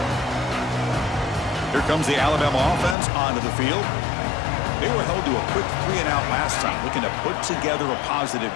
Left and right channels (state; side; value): drops out; right; at 3.0 s